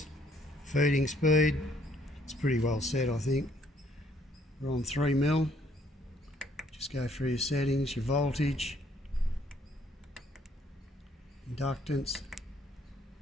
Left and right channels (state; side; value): normal; both; correlation 0.65